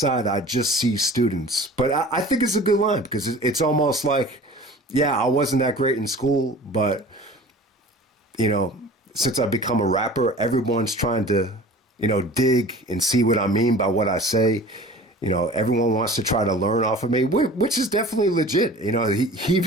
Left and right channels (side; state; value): both; normal; correlation 0.42